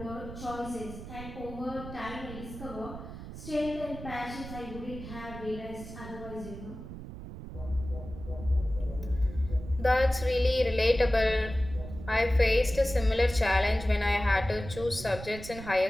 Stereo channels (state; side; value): noise; right; rumble, 11 dB below the sound